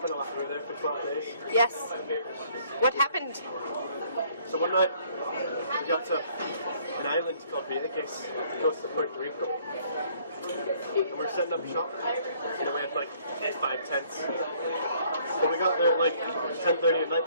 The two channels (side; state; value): both; inverted; correlation -0.61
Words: a lot. We were there for 12 days. Yes. What happened? So one night, we got to an island called Vieques, close to Puerto Rico. And we were setting up shop. You know, we had like 5 tents. But we got there at like 10:30 at night